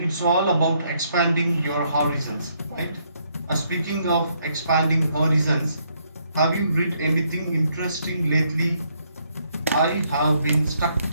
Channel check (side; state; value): both; inverted; correlation -0.72